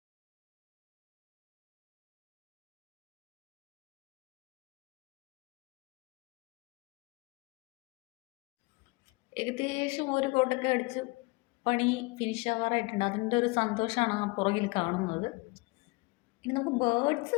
ഏകദേശം ഒരു കോട്ടൊക്കെ അടിച്ച് പണി ഫിനിഷ് ആവാറായിട്ടുണ്ട്. അതിൻ്റെ ഒരു സന്തോഷമാണ് ആ പുറകിൽ കാണുന്നത്. ഇനി നമുക്ക്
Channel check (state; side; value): quieter; right; 26.0 dB